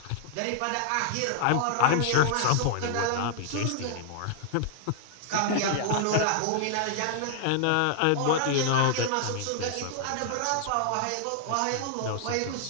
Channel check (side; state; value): both; different; correlation -0.01